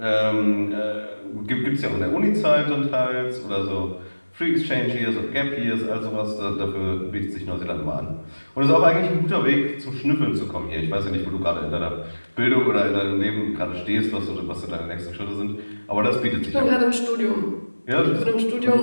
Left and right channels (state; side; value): inverted; both; correlation -1.00